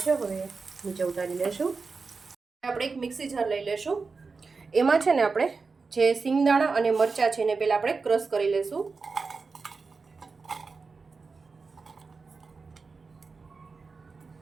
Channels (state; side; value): quieter; left; 4.5 dB